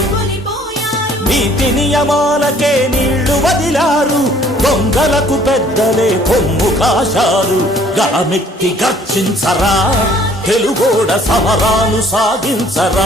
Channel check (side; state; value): both; normal; correlation 0.58